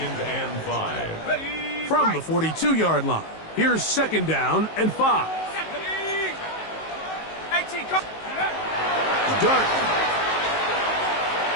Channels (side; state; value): right; late; 19 ms